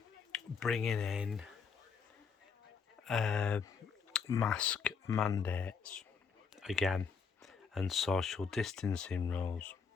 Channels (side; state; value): right; quieter; 5.8 dB